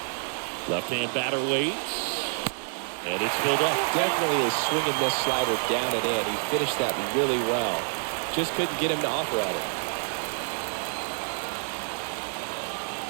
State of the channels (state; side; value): silent; left; 58 dB below the other